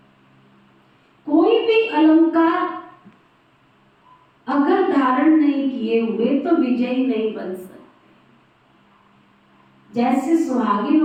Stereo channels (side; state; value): both; identical; correlation 1.00